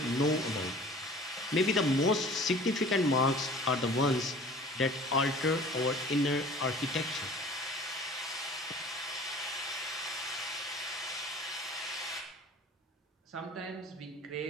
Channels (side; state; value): both; normal; correlation 0.45